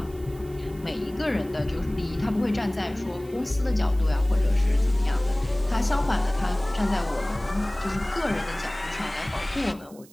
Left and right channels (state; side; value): noise; right; hiss, 24 dB below the sound